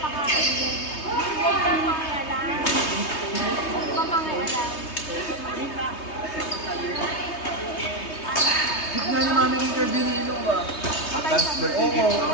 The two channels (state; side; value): late; right; 3.2 ms